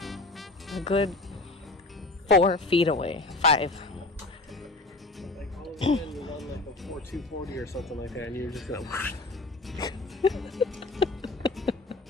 a good 4 feet away. 5. Like all of a sudden you're on like a 240 or something like that, and you're just gonna.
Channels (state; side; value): quieter; right; 3.1 dB